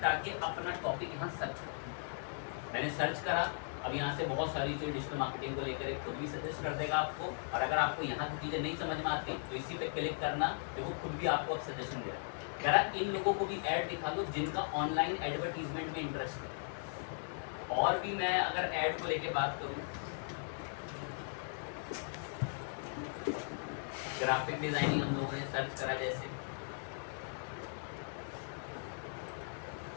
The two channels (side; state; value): right; silent; digital silence